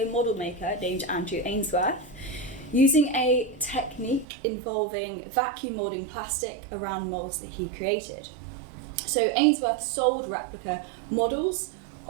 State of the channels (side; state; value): left; drops out; at 4.2 s